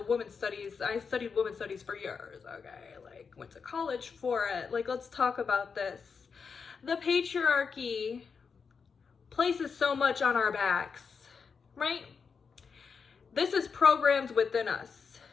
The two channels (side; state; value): right; quieter; 5.6 dB